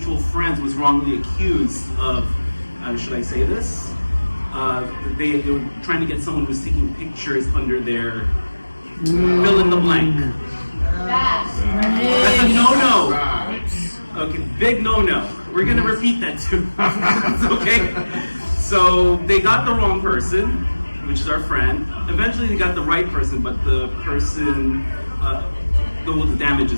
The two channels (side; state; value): both; inverted; correlation -1.00